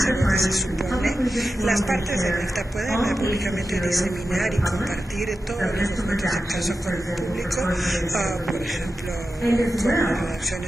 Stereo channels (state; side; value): normal; both; correlation 0.92